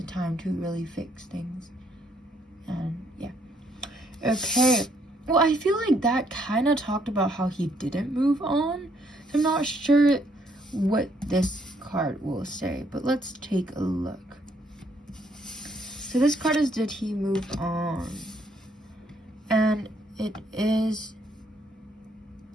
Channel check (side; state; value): both; normal; correlation 0.70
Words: time to really fix things. And yeah, okay, well, I feel like that kind of talked about how he didn't move on. So I'm not sure what this card will say, but let's take a look. So this card is, did he move on? And it is